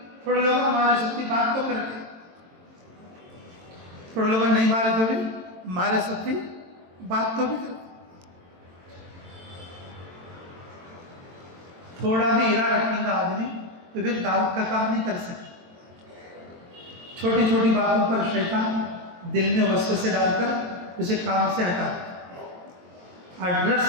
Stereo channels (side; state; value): left; late; 22 ms